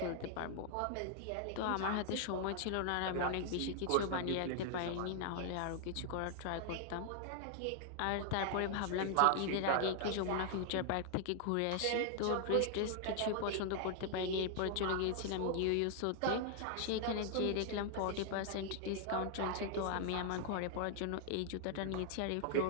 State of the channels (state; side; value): different; both; correlation 0.00